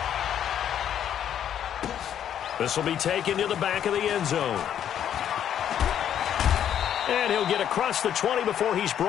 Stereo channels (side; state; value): right; quieter; 9.7 dB